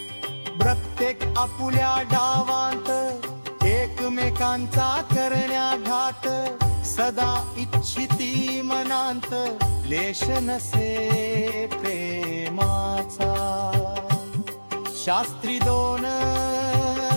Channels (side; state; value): both; inverted; correlation -1.00